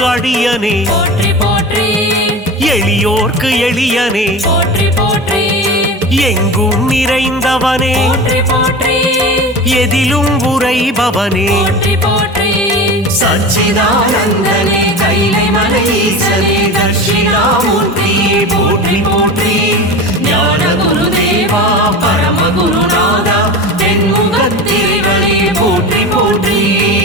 அடியனே போற்றி போற்றி எளியோர்க்கு எளியனே போற்றி போற்றி எங்கும் நிறைந்தவனே போற்றி போற்றி எதிலும் உரைபவனே போற்றி போற்றி சச்சிதானந்தனே கைலை மலை ஈசனே தட்சிணாமூர்த்தியே போற்றி போற்றி ஞான குருதேவா பரம குருநாதா தென்முகத்தேவனே போற்றி போற்றி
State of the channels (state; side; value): normal; both; correlation 0.29